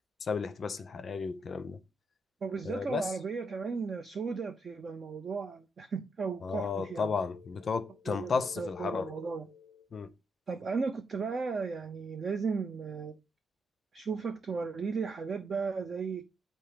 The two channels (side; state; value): both; normal; correlation 0.78